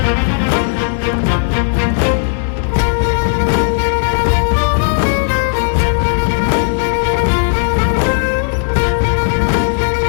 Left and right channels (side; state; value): right; silent; digital silence